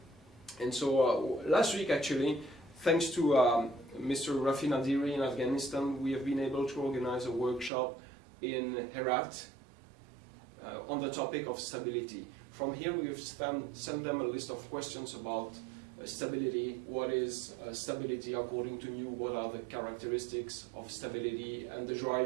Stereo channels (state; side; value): drops out; left; at 7.7 s